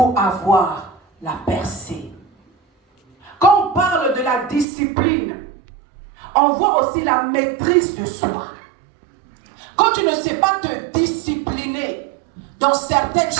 avoir la percée. Quand on parle de la discipline, on voit aussi la maîtrise de soi. Quand tu ne sais pas te discipliner dans certaines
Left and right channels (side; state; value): left; drops out; at 4.7 s